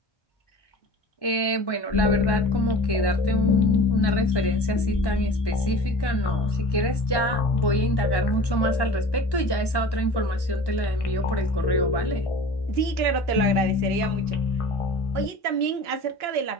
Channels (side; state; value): right; late; 1.1 ms